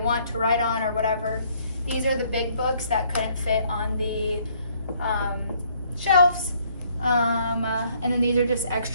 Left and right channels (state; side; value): inverted; both; correlation -0.65